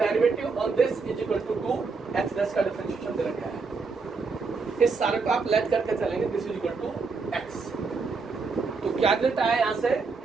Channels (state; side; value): quieter; left; 4.5 dB